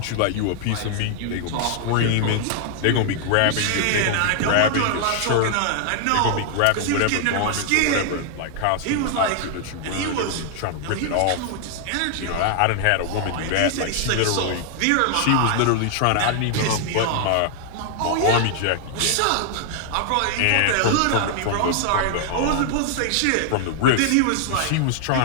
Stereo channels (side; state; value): both; different; correlation 0.00